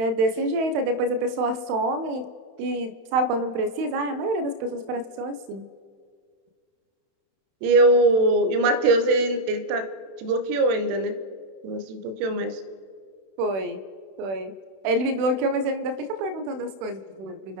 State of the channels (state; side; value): late; left; 31 ms